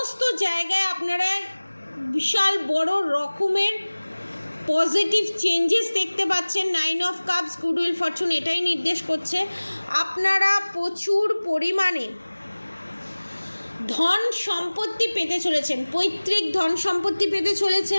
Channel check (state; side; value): inverted; both; correlation -1.00